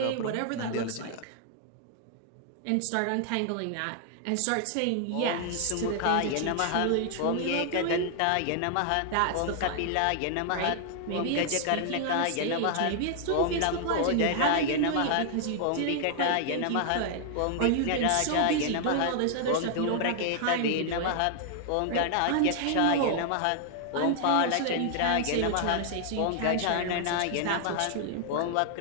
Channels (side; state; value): both; different; correlation 0.00